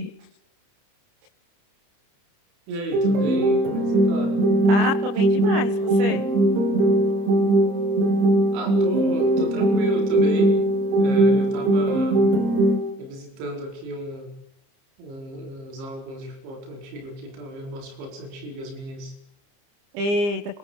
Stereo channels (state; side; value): late; left; 30 ms